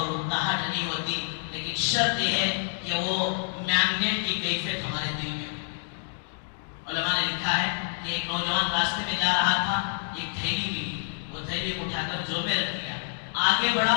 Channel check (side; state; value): right; silent; digital silence